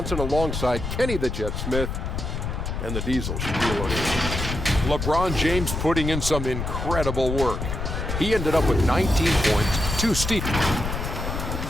alongside Kenny the Jet Smith and the Diesel, Shaquille O'Neal. LeBron James putting in some incredible work. He ended up with 19 points, 2 steals.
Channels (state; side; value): noise; left; rumble, 4 dB below the sound